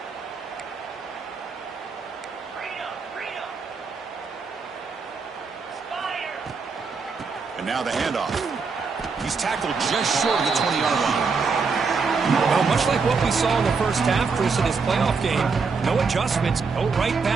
And now the handoff. He's tackled just short of the 20-yard line. Well, much like what we saw in the first half, Chris, of this playoff game, no adjustments, go right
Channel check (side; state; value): left; quieter; 5.0 dB